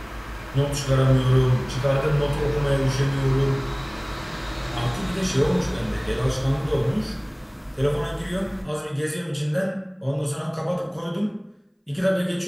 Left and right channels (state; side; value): identical; both; correlation 1.00